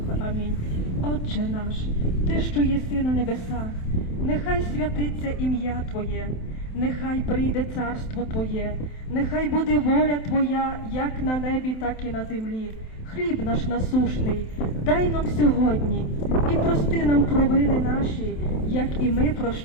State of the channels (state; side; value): late; right; 27 ms